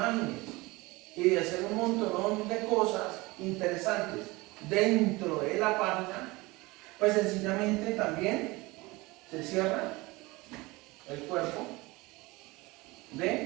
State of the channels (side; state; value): left; quieter; 22.5 dB